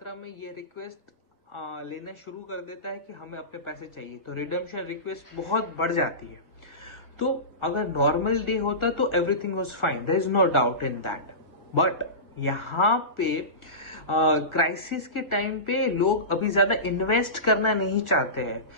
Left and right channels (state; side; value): late; right; 1.3 ms